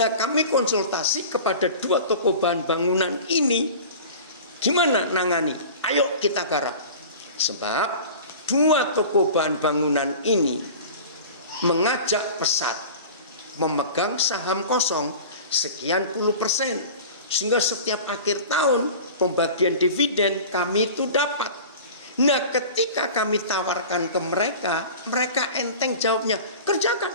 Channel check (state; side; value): inverted; both; correlation -0.38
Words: kami konsultasi kepada dua toko bahan bangunan ini, gimana nangani? Ayo kita garap. Sebab dua toko bahan bangunan ini mengajak Pesat memegang saham kosong sekian puluh %. Sehingga setiap akhir tahun pembagian dividen kami itu dapat. Nah ketika kami tawarkan ke mereka, mereka enteng jawabnya, kerjakan.